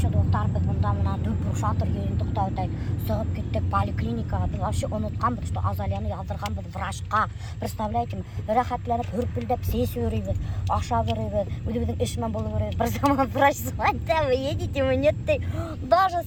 достар, біз бұнда мына дөп шатыр ендік таудай сығып кеттік поликлиникаға. Біз вообще ұнытқанбыз, что Азалияны ялдырғанбыз врачқа. Представляете, рахатленіп, үрпілдеп, сес өрейбіз, аша өрейбіз, өді-біздің ішімен болу өрейбіз. Бір заман врач звонды, вы едете, вы нет, даже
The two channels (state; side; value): identical; both; correlation 1.00